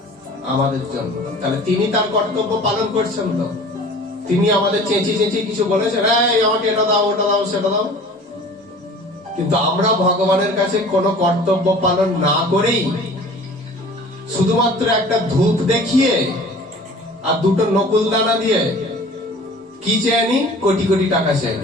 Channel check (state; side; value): normal; both; correlation 0.45